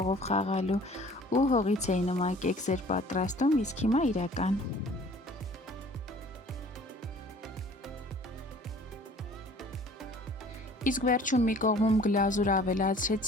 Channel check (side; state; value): both; normal; correlation 0.51